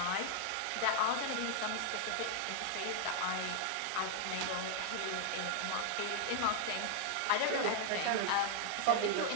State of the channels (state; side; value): different; both; correlation 0.00